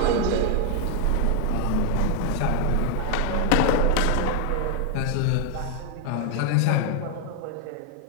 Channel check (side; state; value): both; different; correlation 0.00